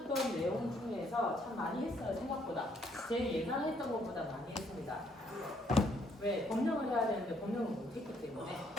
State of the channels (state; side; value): normal; both; correlation 0.69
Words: 내용 중에서 참 많이 했어요. 생각보다. 제 예상했던 것보다 많이 했습니다. 왜? 법령을 해야 되는데 법령을 못했기 때문에.